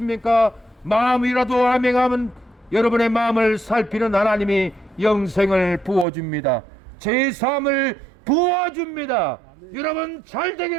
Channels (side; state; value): left; drops out; at 6.1 s